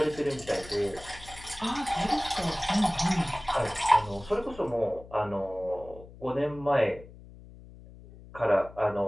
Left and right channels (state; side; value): noise; left; hum, 19 dB below the sound